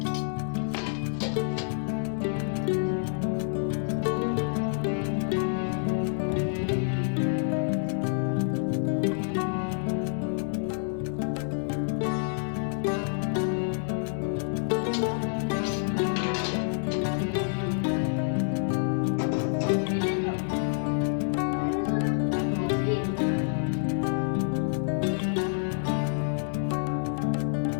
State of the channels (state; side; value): silent; right; digital silence